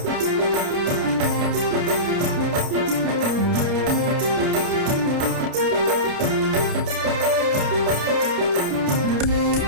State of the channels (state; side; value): late; left; 29 ms